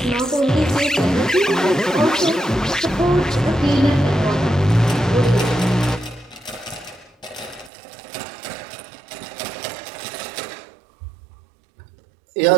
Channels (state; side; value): drops out; left; at 7.7 s